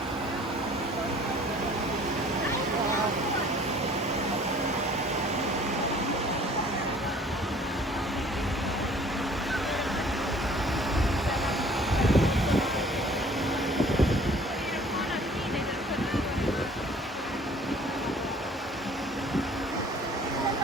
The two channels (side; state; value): both; normal; correlation 0.53